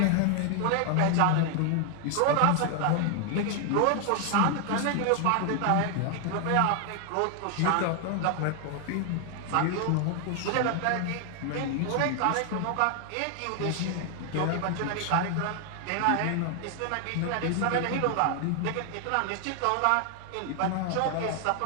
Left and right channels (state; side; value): different; both; correlation 0.00